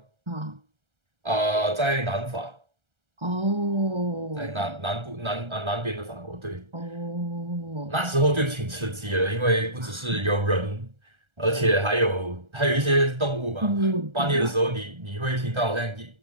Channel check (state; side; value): late; left; 1.3 ms